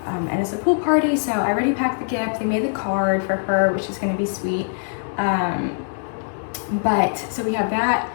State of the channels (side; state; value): right; silent; digital silence